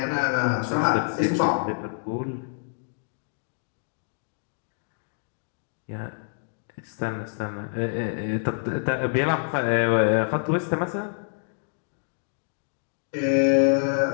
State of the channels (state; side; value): silent; right; digital silence